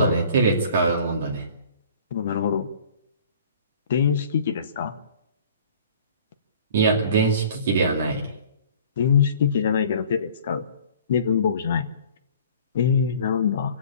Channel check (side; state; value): both; inverted; correlation -0.50